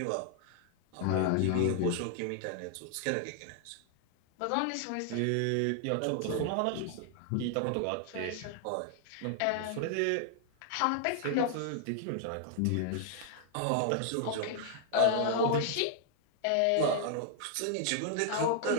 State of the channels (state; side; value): different; both; correlation 0.00